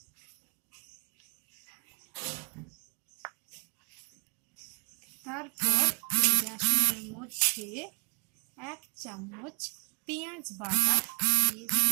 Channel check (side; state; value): left; quieter; 38.3 dB